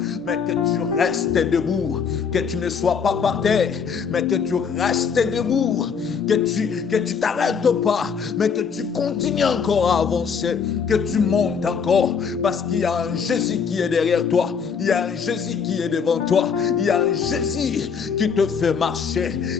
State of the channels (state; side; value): quieter; right; 6.3 dB